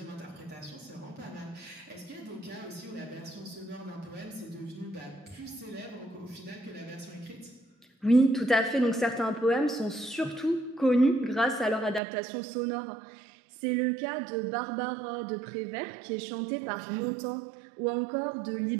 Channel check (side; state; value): left; drops out; at 12.0 s